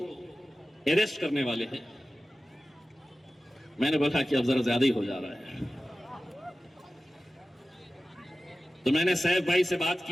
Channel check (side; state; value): both; normal; correlation 0.95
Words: अरेस्ट करने वाले हैं। मैंने बोला कि अब जरा ज्यादा ही हो जा रहा है, तो मैंने सैफ भाई से बात